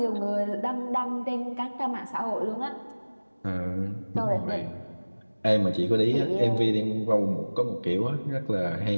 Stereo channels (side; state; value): both; inverted; correlation -1.00